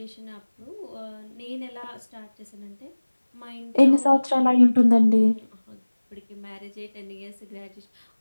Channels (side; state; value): both; inverted; correlation -1.00